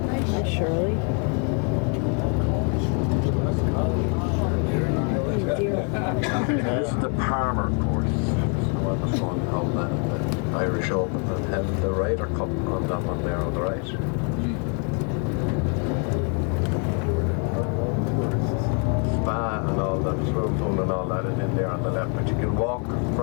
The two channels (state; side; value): quieter; right; 37.5 dB